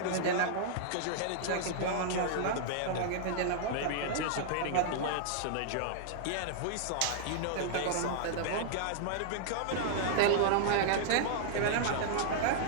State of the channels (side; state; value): both; different; correlation -0.01